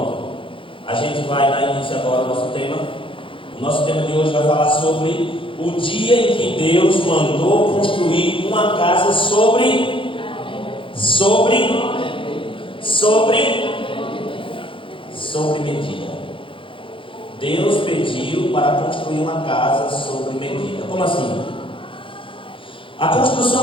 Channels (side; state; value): right; late; 0.25 ms